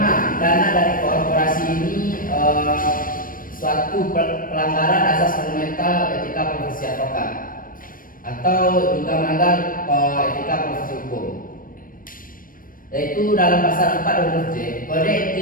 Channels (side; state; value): right; late; 0.40 ms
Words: dana dari korporasi ini suatu pelanggaran asas fundamental etika profesi advokat atau juga melanggar etika profesi hukum, yaitu dalam pasal 4 huruf J Kode